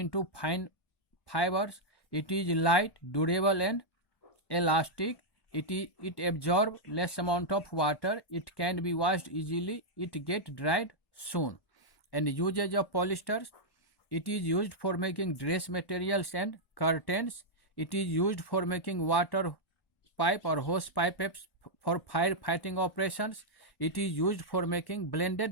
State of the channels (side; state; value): right; late; 1.1 ms